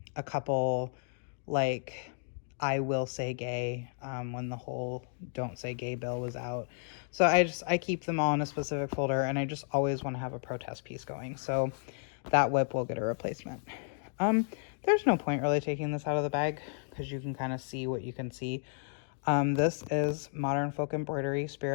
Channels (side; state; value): right; silent; 56 dB below the other